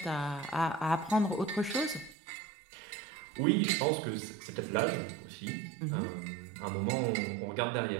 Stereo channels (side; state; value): left; drops out; at 2.1 s